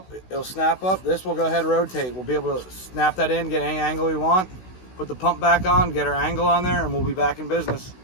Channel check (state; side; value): late; right; 16 ms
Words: it'll snap up. This will go ahead and rotate. We'll be able to snap that in, get any angle we want, put the pump back on, get our angle on there, and we'll be back in business.